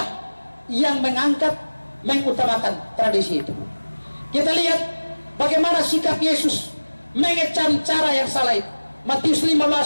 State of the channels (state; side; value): inverted; both; correlation -1.00